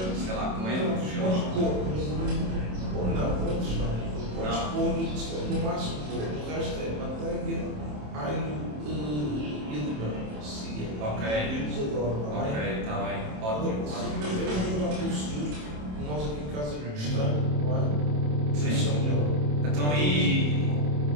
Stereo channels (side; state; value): left; late; 27 ms